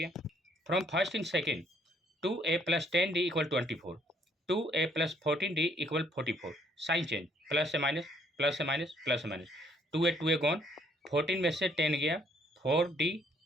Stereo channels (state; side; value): normal; both; correlation 0.65